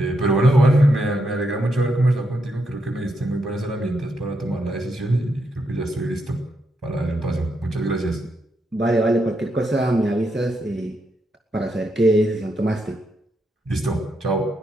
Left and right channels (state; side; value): normal; both; correlation 0.81